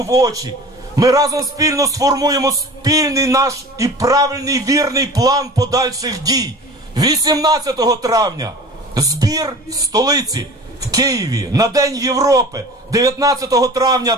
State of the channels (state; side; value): normal; both; correlation 0.40